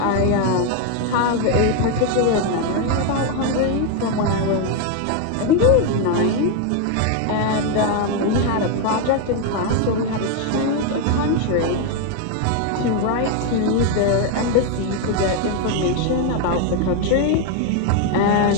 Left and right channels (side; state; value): both; different; correlation 0.01